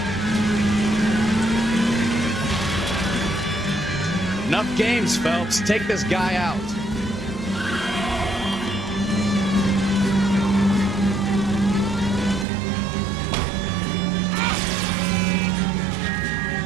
Enough games, Phelps. Take this guy out.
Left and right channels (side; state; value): left; drops out; at 12.5 s